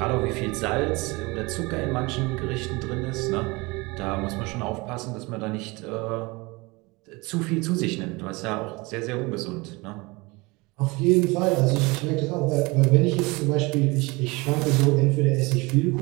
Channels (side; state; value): left; quieter; 24.8 dB